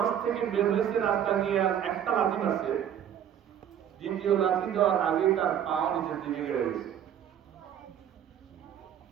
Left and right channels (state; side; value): quieter; left; 9.6 dB